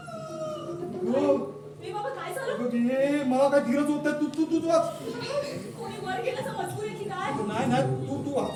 ए बाबा, काय झालं? हे मला काय धीरच होत नाही. तू वाच. कोणी वर गेल्याचं मजकूर आहे की काय? नाही तू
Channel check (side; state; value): both; identical; correlation 1.00